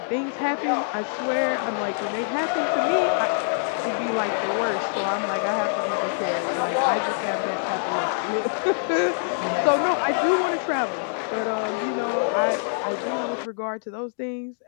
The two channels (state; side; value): silent; right; digital silence